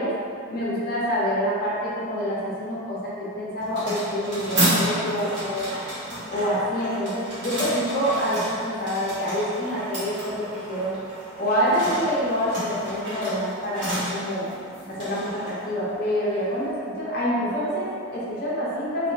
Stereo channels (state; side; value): normal; both; correlation 0.15